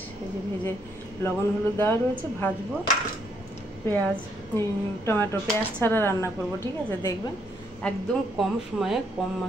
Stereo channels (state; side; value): normal; both; correlation 0.72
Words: এই যে ভেজে লবণ হলুদ দেওয়া রয়েছে, ভাজবো। পেঁয়াজ টমেটো পেঁয়াজ ছাড়া রান্না করব, ঠিক আছে? দেখবেন একদম কম সময়ে কম